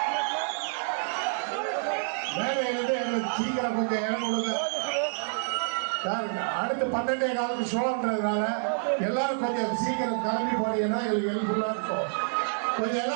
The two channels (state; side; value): silent; left; digital silence